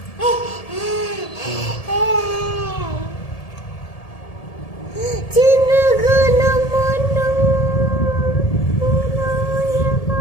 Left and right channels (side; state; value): right; late; 1.7 ms